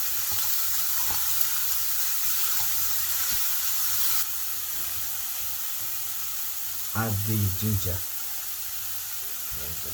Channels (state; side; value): identical; both; correlation 1.00